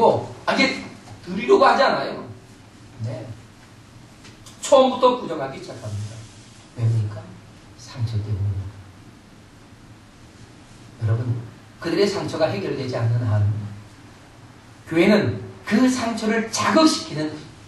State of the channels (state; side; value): identical; both; correlation 1.00